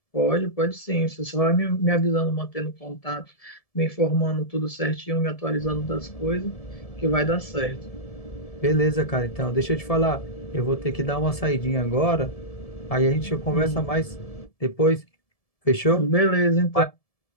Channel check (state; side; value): late; right; 1.7 ms